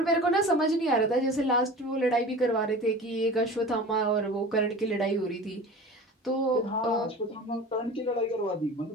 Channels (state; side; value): normal; both; correlation 0.37